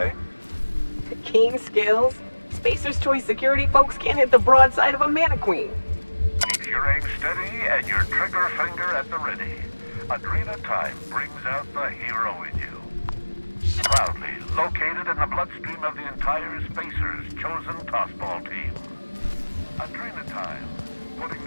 Keen skills. Spacer's Choice security folks can't hit the broadside of a mannequin. Keep your aim steady and your trigger finger at the ready. Adrena Time brings out the hero in you. Proudly located in the bloodstream of the entire Spacer's chosen tossball team. Adrena Time, putting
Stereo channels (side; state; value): both; inverted; correlation -1.00